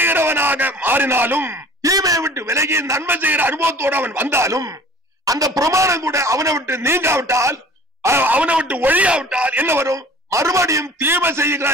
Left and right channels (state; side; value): normal; both; correlation 0.46